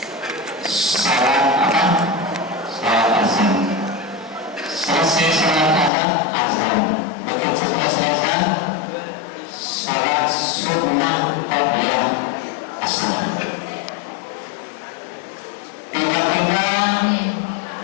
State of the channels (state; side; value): drops out; right; at 5.9 s